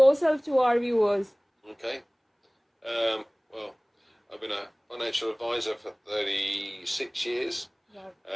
to our viewers. Okay. Well, I've been a financial advisor for 36 years. Wow.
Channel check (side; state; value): both; identical; correlation 1.00